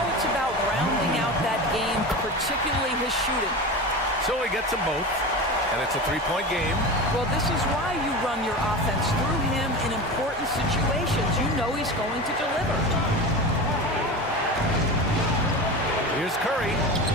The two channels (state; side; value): normal; both; correlation 0.28